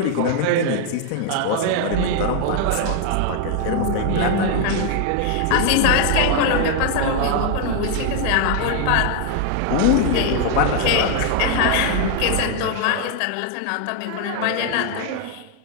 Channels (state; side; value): different; both; correlation 0.00